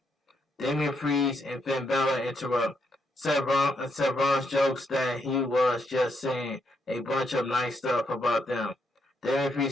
Damien Priest and Finn Balor interrupt. Seth Rollins jokes that he was just saying a bunch of nice stuff about them. Damien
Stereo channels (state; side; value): normal; both; correlation 0.77